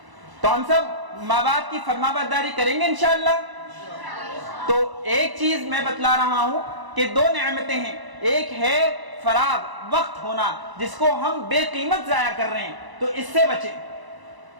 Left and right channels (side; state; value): left; late; 1.0 ms